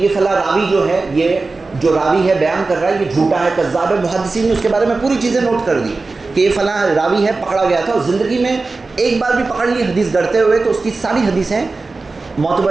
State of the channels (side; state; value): left; quieter; 3.7 dB